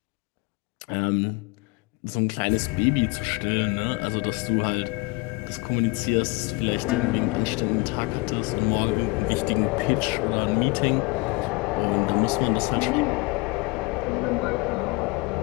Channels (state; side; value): quieter; right; 26.0 dB